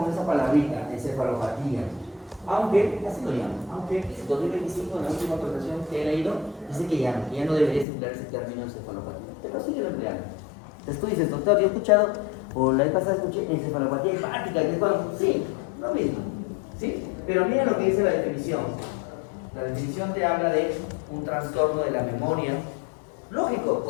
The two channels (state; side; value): drops out; right; at 7.9 s